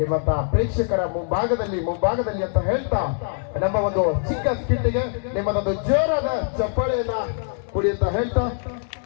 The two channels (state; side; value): silent; right; digital silence